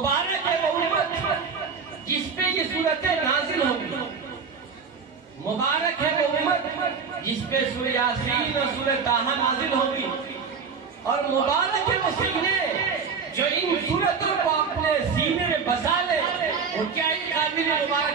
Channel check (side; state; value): left; quieter; 5.7 dB